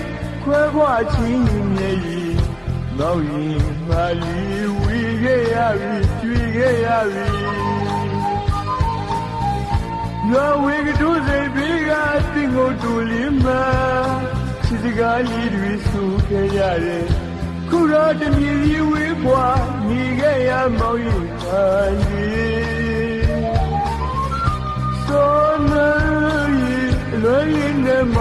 ခွဲခွာချင်းမြည်ကြီးမောင်ရင်မာလီဝီခဲ့ရပြီကျွေခဲ့ရပြီရွာဝေကတူးစိတ်ပြီးကတင်ကိုတူလင်းမချစ်စကားလေးတွေဆိုခဲ့ရတယ်ခုတော့တမြည်ကြီးဝေးပွားနေခဲ့ရမောင်ရင်မာလီဆိုနေလွယ်ရင်းနဲ့မ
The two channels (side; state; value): both; identical; correlation 1.00